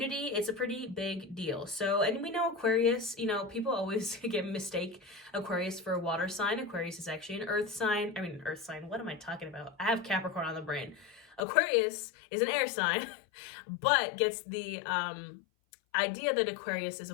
It's a pretty big deal. So, and we know Aquarius, you know, people always mistake Aquarius for a water sign. Aquarius is actually an earth sign. What am I talking about? I have Capricorn on the brain. Aquarius is an air sign, but gets the idea that Aquarius is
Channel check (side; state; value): right; drops out; at 11.4 s